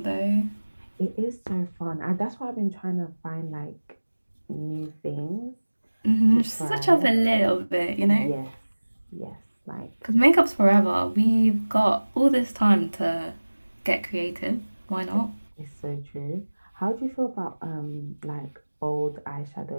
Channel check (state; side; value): inverted; both; correlation -1.00